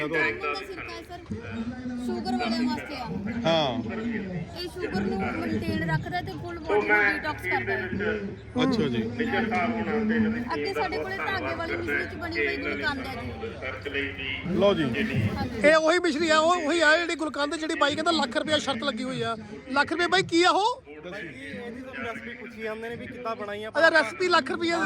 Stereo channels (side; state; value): both; identical; correlation 1.00